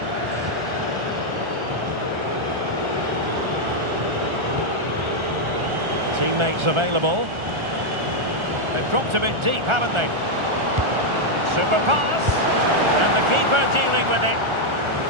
Teammates available. They've dropped a bit deep, haven't they? Super pass. And the keeper dealing with it.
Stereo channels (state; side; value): late; left; 1.4 ms